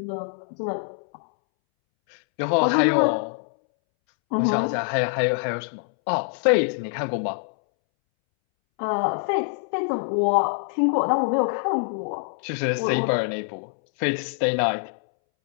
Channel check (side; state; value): right; silent; 62 dB below the other